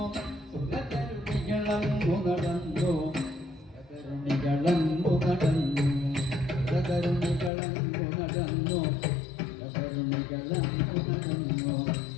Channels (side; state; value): right; drops out; at 7.5 s